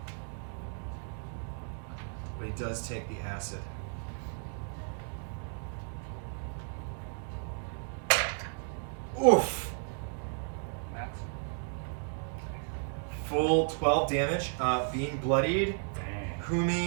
But he does take the acid. Oof! Max. Full 12 damage. Being bloodied.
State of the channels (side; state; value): left; silent; 55 dB below the other